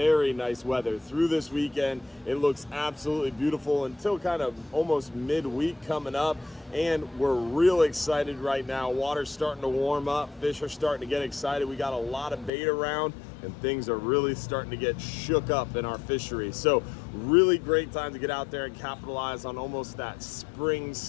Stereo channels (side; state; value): right; drops out; at 12.5 s